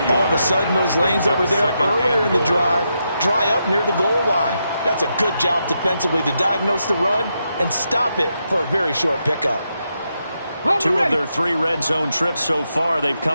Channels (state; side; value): inverted; both; correlation -0.83